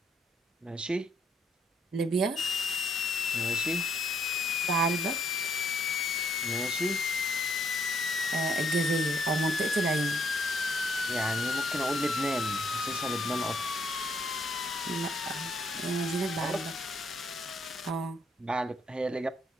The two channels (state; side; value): normal; both; correlation 0.69